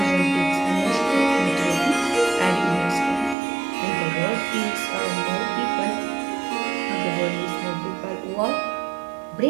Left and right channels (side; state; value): left; drops out; at 3.4 s